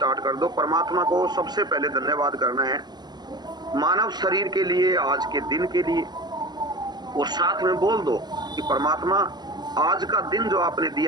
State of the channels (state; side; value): late; left; 0.20 ms